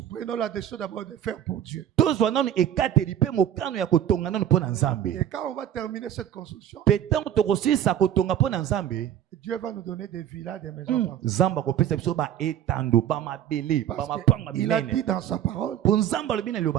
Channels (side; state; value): left; quieter; 10.6 dB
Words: Prenons la décision d'abord de faire pour Dieu. Et quand on va terminer cette construction, Dieu va nous donner des villas, des maisons. Il a dit dans sa parole,